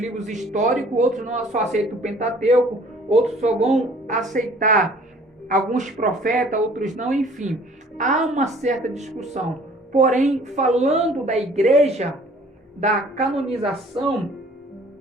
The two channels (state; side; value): normal; both; correlation 0.54